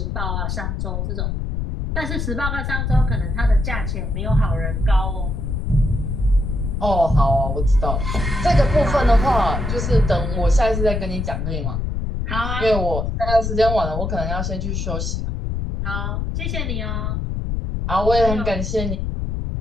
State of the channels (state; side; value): noise; left; rumble, 2 dB below the sound